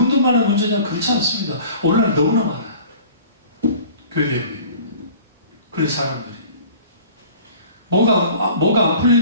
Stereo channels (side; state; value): both; inverted; correlation -0.47